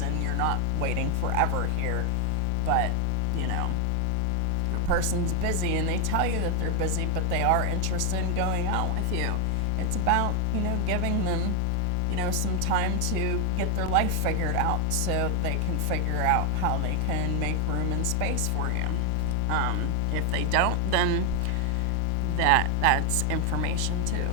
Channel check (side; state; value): both; different; correlation 0.00